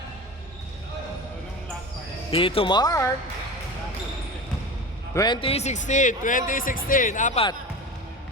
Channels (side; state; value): both; normal; correlation 0.30